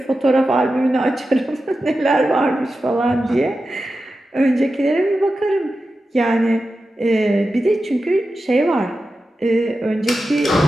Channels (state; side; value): normal; both; correlation 0.92